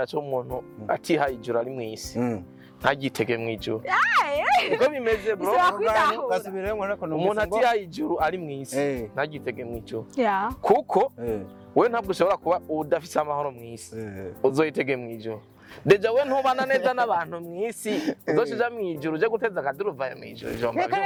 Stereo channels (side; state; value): both; identical; correlation 1.00